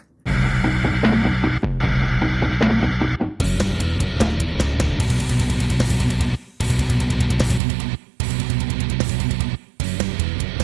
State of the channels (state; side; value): drops out; left; at 7.6 s